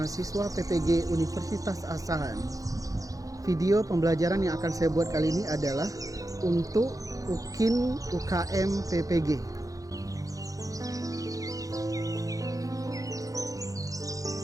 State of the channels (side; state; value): left; late; 0.17 ms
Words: PPG Universitas Asahan. Video pembelajaran yang akan saya buat kali ini adalah untuk UKIN UKM PPG.